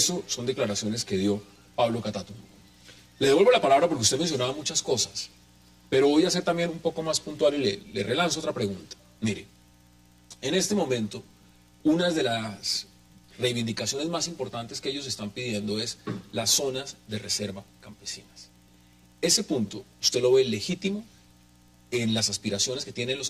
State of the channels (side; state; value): both; identical; correlation 1.00